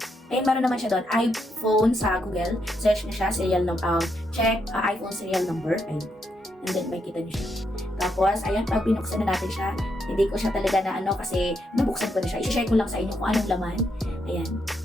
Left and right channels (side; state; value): both; normal; correlation 0.79